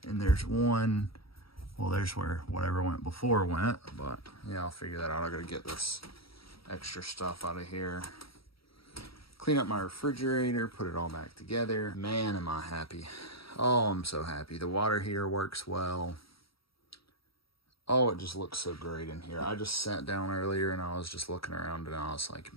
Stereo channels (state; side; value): late; right; 0.75 ms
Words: and there's one, well, there's where whatever went before went, but yeah, I'll figure that out. I gotta get this extra stuff out of here, clean up my refrigerator, put it all back together. Man, am I happy. Oh, I'm so happy. The water heater works well. Oh, it just looks so great in here. I just sat down earlier and I was just looking around and I was like,